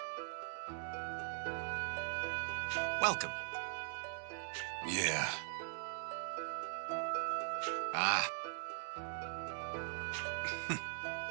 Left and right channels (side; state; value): left; silent; digital silence